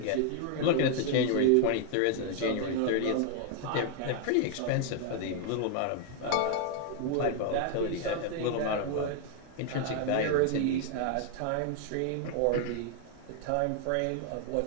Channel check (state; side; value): different; both; correlation 0.00